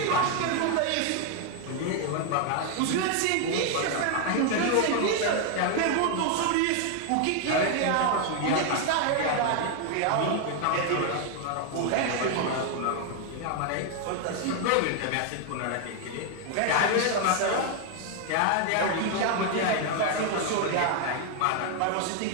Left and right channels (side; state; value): both; different; correlation 0.00